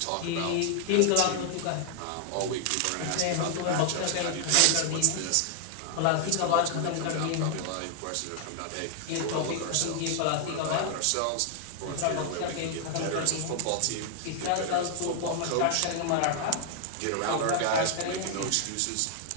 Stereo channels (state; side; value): different; both; correlation 0.00